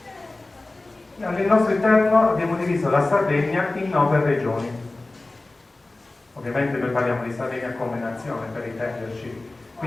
Nel nostro interno abbiamo diviso la Sardegna in 9 regioni. Ovviamente noi parliamo di Sardegna come nazione, per intenderci.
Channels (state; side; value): quieter; right; 3.0 dB